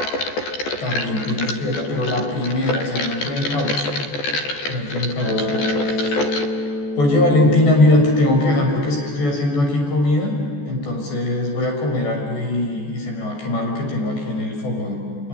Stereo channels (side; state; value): right; late; 14 ms